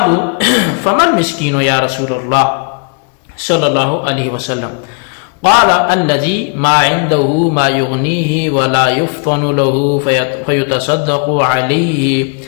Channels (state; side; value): quieter; right; 39.7 dB